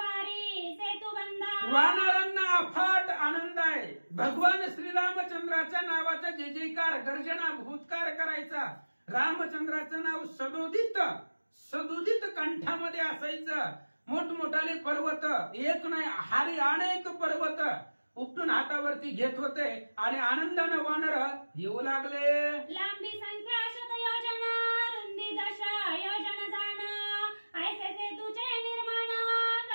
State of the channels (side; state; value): both; inverted; correlation -1.00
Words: सेतुबंधा. वानरांना अफाट आनंद आहे. भगवान श्रीरामचंद्राच्या नावाचा जय जयकार गर्जना भूतकार करायचा. रामचंद्राचं नाव सदुदित कंठामध्ये असायचं. मोठमोठाले पर्वत एक नाही हारी अनेक पर्वत उपटून हातावरती घेत होते आणि आनंदाने वानर येऊ लागले. लांबी संख्या शत योजना रुंदी दश योजन जाण ऐसे सेतूचे निर्माण